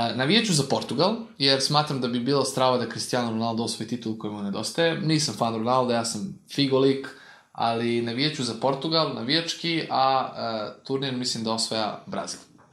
za Portugal, jer smatram da bi bilo strava da Cristiano Ronaldo osvoji titul koji mu nedostaje. Nisam fan Ronaldo, ja sam figolik, ali navijeću za Portugal, navijački, a turnir mislim da osvaja Brazil.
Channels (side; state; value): both; identical; correlation 1.00